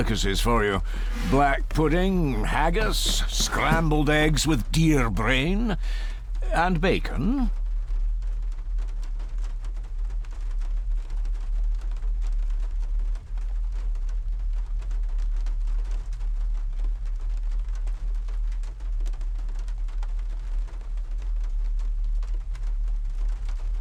for you. Black pudding, haggis, scrambled eggs with deer brain, and bacon.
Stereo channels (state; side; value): identical; both; correlation 1.00